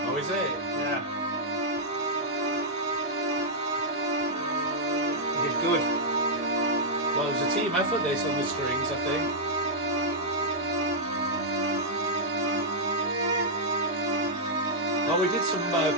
Oh, is it? Yeah. You did good. Well, it was a team effort this on the strings, I think. Oh, we did some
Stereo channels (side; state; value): both; normal; correlation -0.08